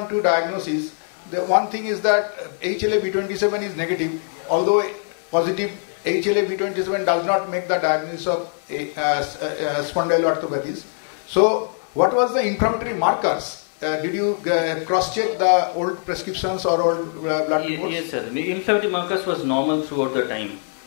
diagnosis, the one thing is that HLA-B27 is negative, although positive HLA-B27 does not make the diagnosis of spondyloarthropathies. So what was the inflammatory markers? Did you cross-check the old prescriptions or old blood reports? Yes, sir. The inflammatory markers was normal throughout the time.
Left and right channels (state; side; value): silent; right; 64 dB below the other